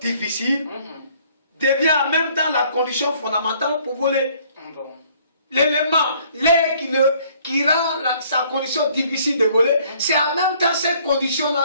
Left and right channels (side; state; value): both; inverted; correlation -0.60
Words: devient en même temps la condition fondamentale pour voler. L'élément, l'air qui rend sa condition difficile de voler, c'est en même temps cette condition-là,